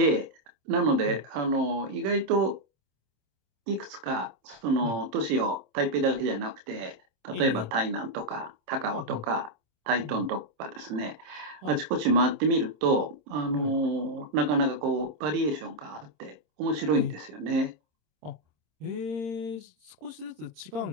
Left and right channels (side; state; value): left; late; 26 ms